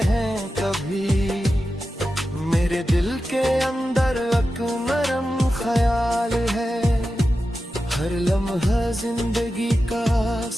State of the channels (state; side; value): normal; both; correlation 0.92